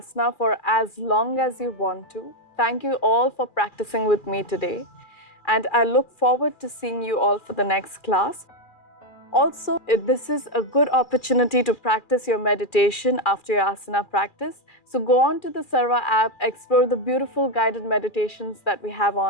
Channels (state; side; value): late; right; 2.4 ms